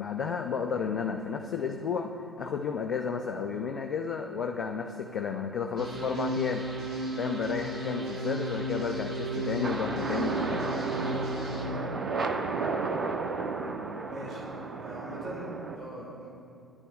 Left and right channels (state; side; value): normal; both; correlation 0.35